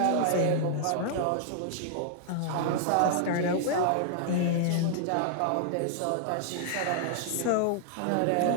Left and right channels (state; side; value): different; both; correlation -0.01